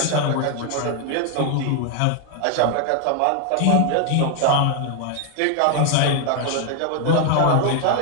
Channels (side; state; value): both; different; correlation 0.00